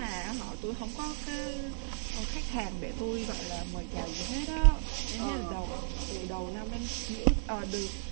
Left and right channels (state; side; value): silent; left; digital silence